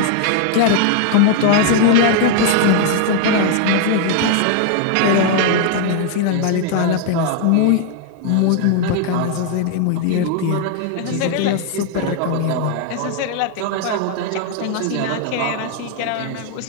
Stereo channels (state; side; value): different; both; correlation 0.00